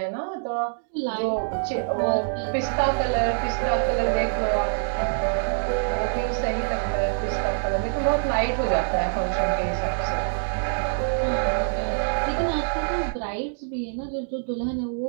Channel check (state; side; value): silent; left; digital silence